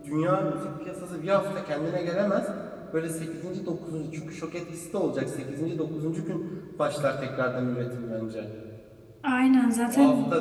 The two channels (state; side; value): identical; both; correlation 1.00